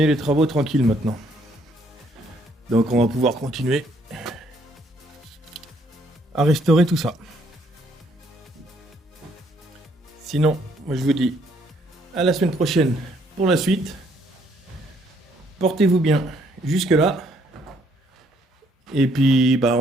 les travaux tranquilles maintenant. Donc on va pouvoir continuer à restaurer tout ça. Sinon, moi je vous dis à la semaine prochaine pour la suite. Portez-vous bien jusque là. Et puis bah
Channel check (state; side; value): normal; both; correlation 0.68